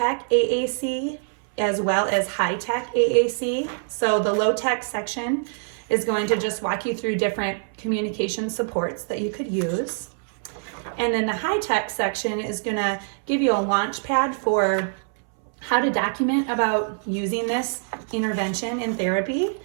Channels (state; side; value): silent; left; 62 dB below the other